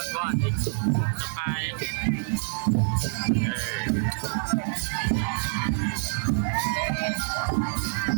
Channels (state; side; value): silent; left; digital silence